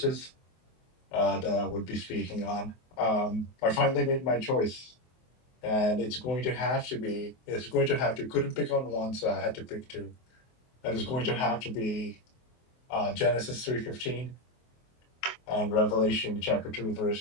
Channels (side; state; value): right; late; 24 ms